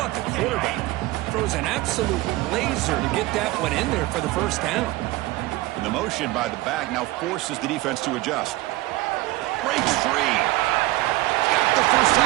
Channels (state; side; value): quieter; left; 18.9 dB